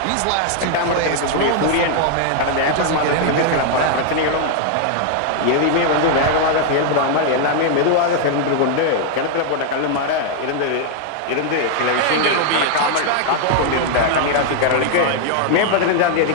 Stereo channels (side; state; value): both; different; correlation 0.00